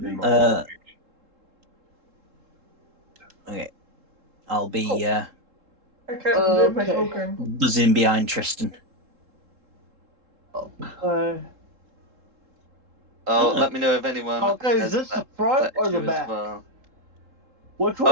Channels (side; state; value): left; late; 3.7 ms